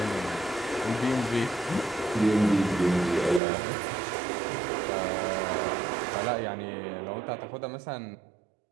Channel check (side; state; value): left; drops out; at 3.4 s